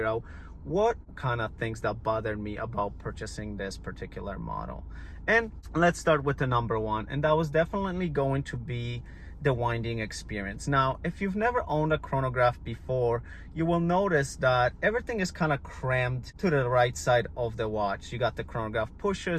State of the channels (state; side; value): identical; both; correlation 1.00